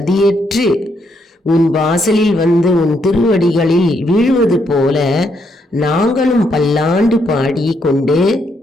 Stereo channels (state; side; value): normal; both; correlation 0.76